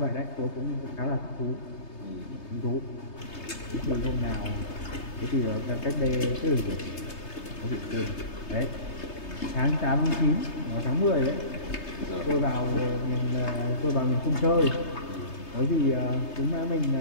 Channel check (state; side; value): late; right; 3.3 ms